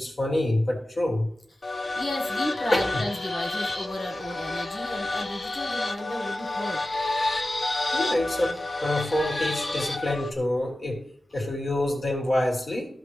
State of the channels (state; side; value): normal; both; correlation 0.94